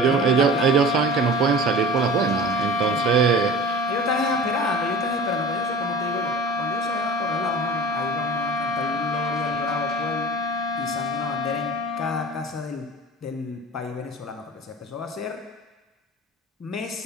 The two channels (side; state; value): both; normal; correlation 0.39